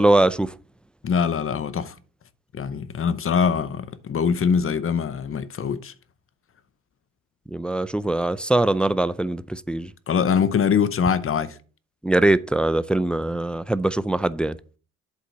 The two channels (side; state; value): both; normal; correlation 0.68